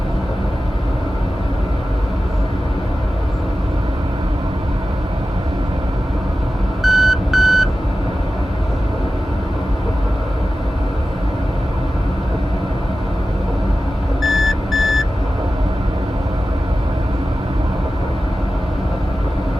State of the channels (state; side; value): normal; both; correlation 0.94